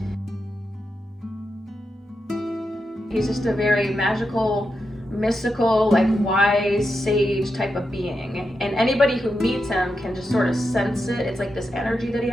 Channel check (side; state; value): both; normal; correlation 0.87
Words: He's just a very magical, mystical, like wise sage type of being. And anybody who meets him can just sort of sense it. It's like this energy that he